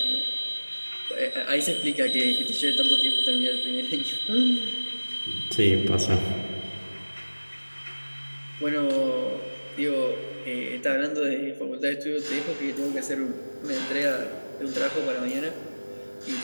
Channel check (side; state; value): both; inverted; correlation -1.00